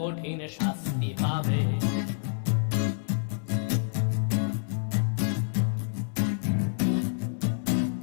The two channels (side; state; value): right; silent; 59 dB below the other